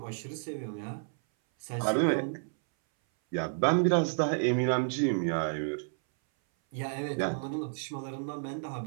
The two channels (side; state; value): left; silent; 57 dB below the other